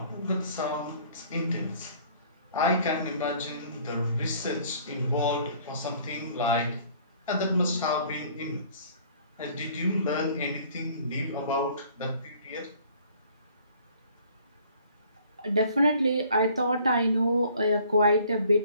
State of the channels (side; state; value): both; inverted; correlation -0.56